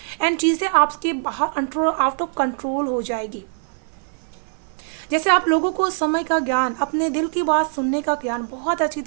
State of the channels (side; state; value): left; silent; 58 dB below the other